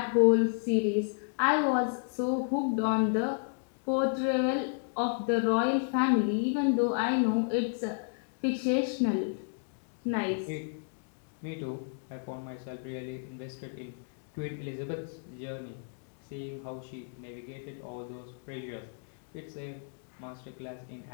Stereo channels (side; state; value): right; silent; digital silence